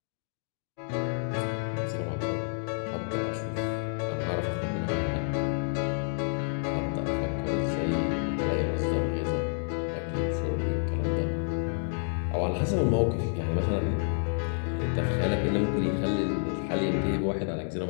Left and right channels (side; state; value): right; silent; digital silence